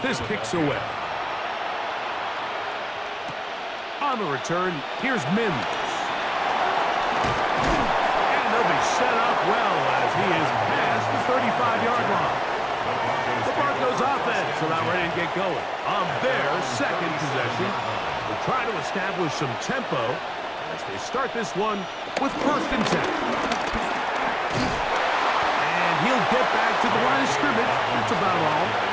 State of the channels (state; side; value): identical; both; correlation 1.00